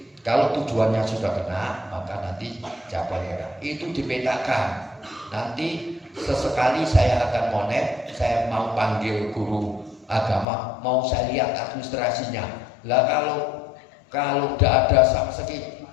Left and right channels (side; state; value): right; drops out; at 10.5 s